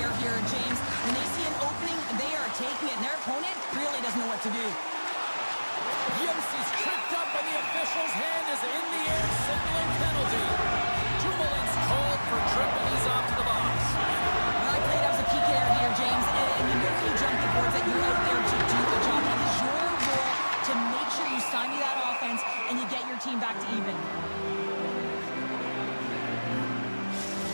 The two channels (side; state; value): both; inverted; correlation -1.00